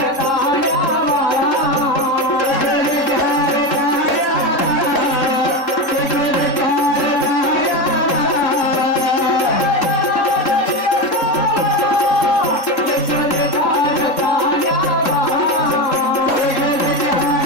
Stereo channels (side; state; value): right; late; 3.7 ms